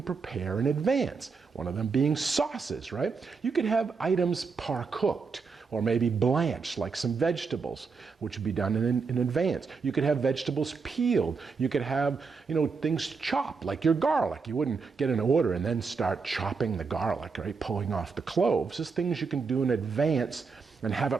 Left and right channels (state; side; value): quieter; left; 5.0 dB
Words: prepare in advance, one of them being sauces, right? You could have items par-cooked or maybe blanched, like some vegetables, which would be done in advance. You could have vegetables peeled. You could have, things chopped, like your garlic. You wouldn't get an order and then start chopping the garlic, right? Pulling off the cloves. Just things you can do in advance and have